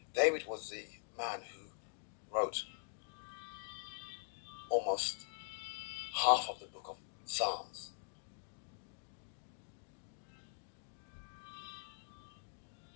David was the man who almost half of the book of Psalms.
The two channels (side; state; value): right; silent; digital silence